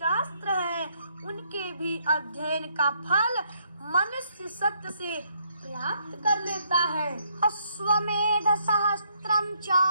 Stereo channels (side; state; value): both; inverted; correlation -0.71